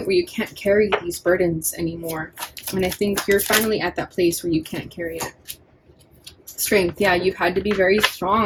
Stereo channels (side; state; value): both; identical; correlation 1.00